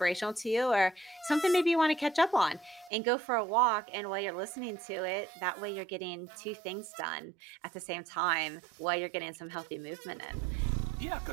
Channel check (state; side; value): drops out; left; at 2.9 s